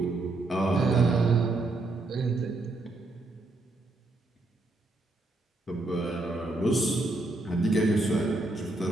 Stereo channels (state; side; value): quieter; left; 3.0 dB